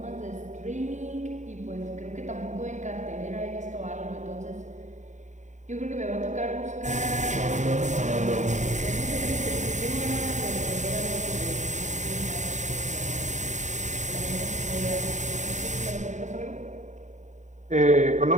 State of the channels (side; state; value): left; late; 0.35 ms